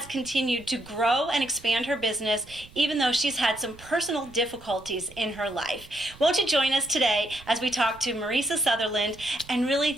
continued to grow and expand her business, even though she's had some personal difficulties in her life. Won't you join us today as we talk to Mariesa Sutherland and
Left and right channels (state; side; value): noise; right; rumble, 21 dB below the sound